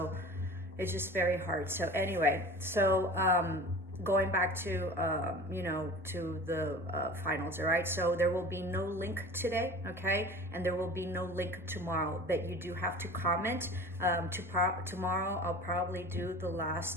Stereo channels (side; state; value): both; normal; correlation 0.39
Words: it's just very hard. So anyway, going back to to the finals, all right? So there will be no link today, okay? And there will be no link tomorrow, but you do have to comment. Tomorrow I'll probably do the